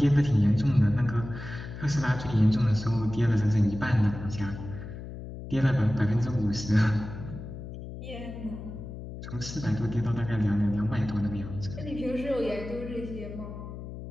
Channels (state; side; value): noise; left; hum, 10 dB below the sound